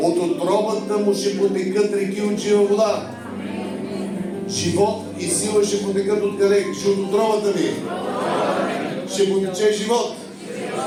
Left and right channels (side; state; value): both; identical; correlation 1.00